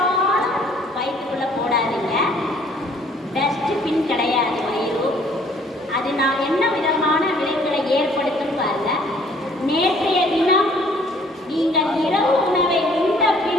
வயிற்றுக்குள்ள போடாதீங்க. டஸ்ட்பின் கிடையாது வயிறு. அது நான் என்ன விதமான விளைவுகளை ஏற்படுத்தும் பாருங்க. நேற்றைய தினம் நீங்கள் இரவு உணவை உண்ட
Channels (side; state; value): both; normal; correlation 0.59